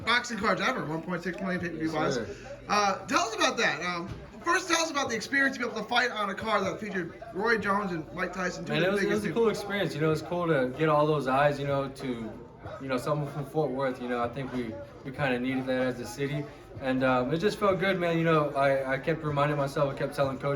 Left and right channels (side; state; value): both; identical; correlation 1.00